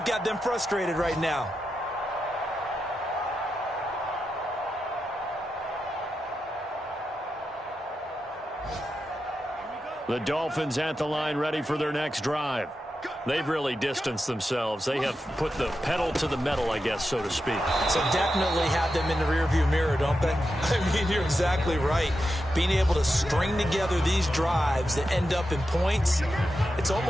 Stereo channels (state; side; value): normal; both; correlation 0.89